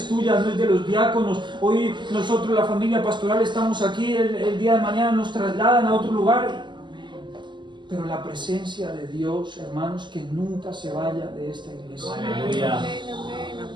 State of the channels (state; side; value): late; left; 0.22 ms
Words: tuya, no es de los diáconos. Hoy nosotros, la familia pastoral, estamos aquí, el día de mañana nos trasladan a otro lugar. Pero la presencia de Dios, hermanos, que nunca se vaya de esta iglesia. Aleluya.